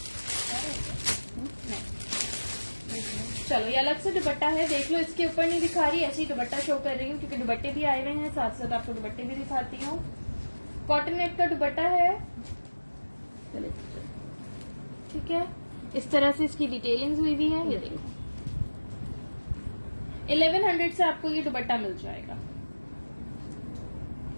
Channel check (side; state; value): both; inverted; correlation -1.00